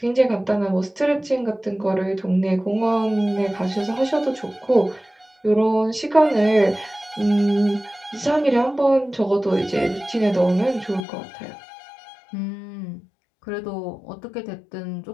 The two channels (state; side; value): drops out; right; at 11.1 s